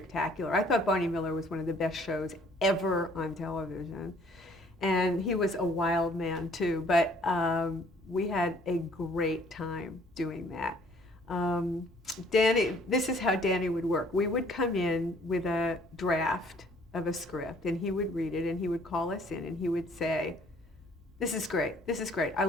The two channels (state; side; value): normal; both; correlation 0.59